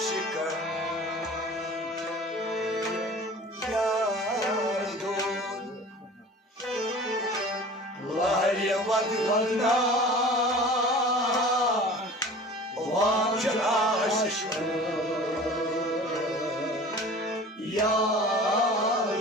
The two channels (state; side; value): normal; both; correlation 0.41